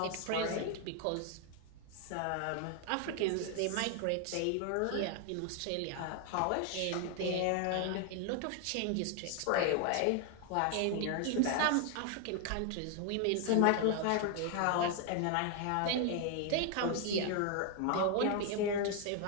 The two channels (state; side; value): different; both; correlation 0.00